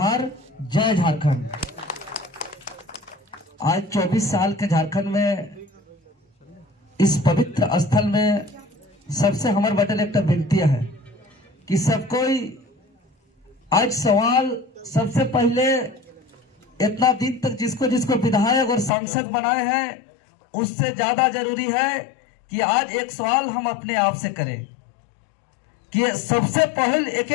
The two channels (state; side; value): drops out; right; at 18.9 s